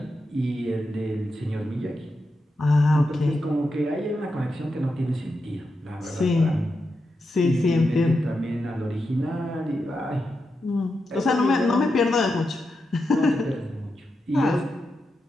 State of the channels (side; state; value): both; normal; correlation 0.87